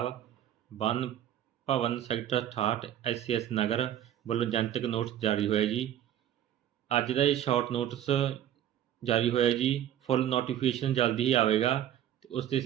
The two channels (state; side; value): quieter; left; 11.2 dB